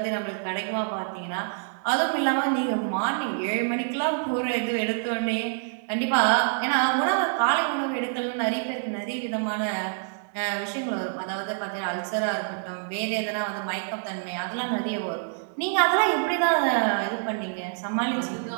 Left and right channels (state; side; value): silent; left; digital silence